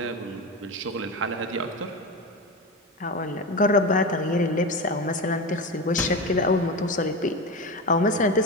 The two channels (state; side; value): normal; both; correlation 0.21